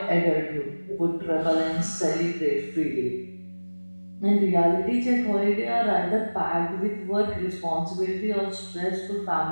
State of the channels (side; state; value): both; inverted; correlation -1.00